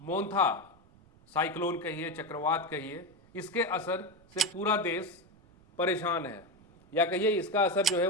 मोंथा साइक्लोन कहिए, चक्रवात कहिए, इसके असर से पूरा देश परेशान है, या कहिए इसका असर जो है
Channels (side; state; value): right; noise; rumble, 28 dB below the sound